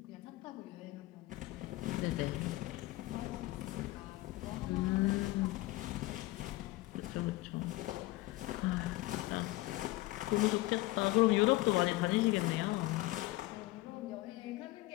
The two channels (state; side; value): quieter; right; 18.9 dB